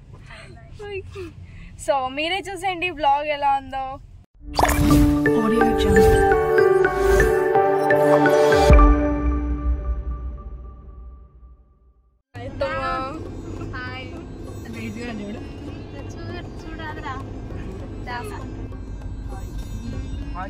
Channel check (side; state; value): both; identical; correlation 1.00